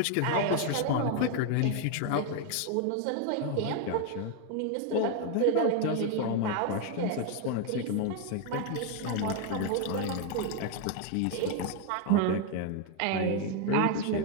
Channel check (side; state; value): both; different; correlation 0.01